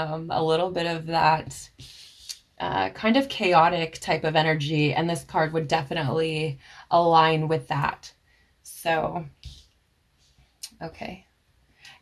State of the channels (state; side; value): identical; both; correlation 1.00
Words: little bit of that kind of chaotic type of energy, and this card would definitely align with that. So, okay.